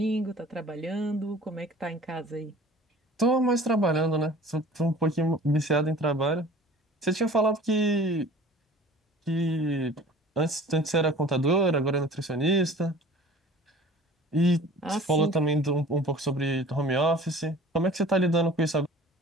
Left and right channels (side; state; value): both; normal; correlation 0.46